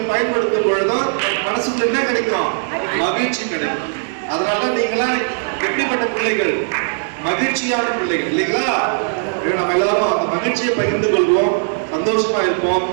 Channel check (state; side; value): silent; left; digital silence